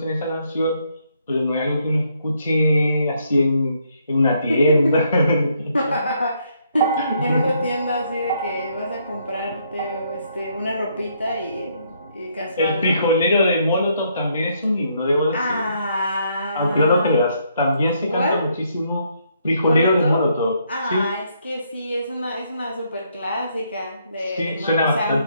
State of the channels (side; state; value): both; inverted; correlation -0.72